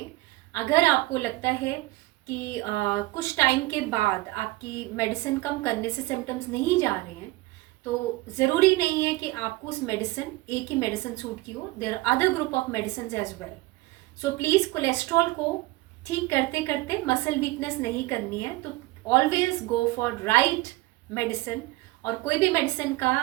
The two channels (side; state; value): left; quieter; 20.2 dB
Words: अगर आपको लगता है कि कुछ टाइम के बाद आपकी मेडिसिन कम करने से सिम्टम्स नहीं जा रहे हैं, तो ज़रूरी नहीं है कि आपको उस मेडिसिन, एक ही मेडिसिन सूट की हो. There are other group of medicine as well. So please, cholesterol को ठीक करते करते मसल वीकनेस नहीं करनी है. तो always go for right medicine. और कोई भी मेडिसिन